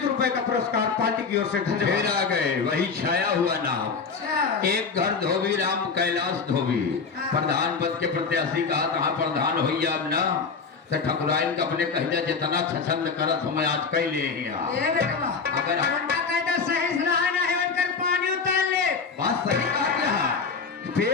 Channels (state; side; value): quieter; right; 5.1 dB